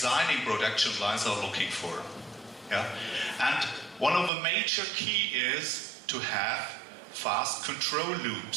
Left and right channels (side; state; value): left; drops out; at 4.3 s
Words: production lines are looking for. Yeah, and one of the major key is to have fast control